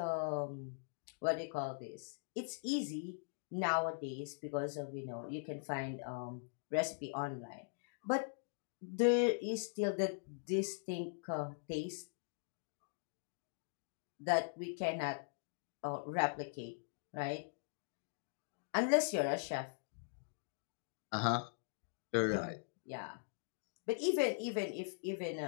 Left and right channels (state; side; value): silent; right; digital silence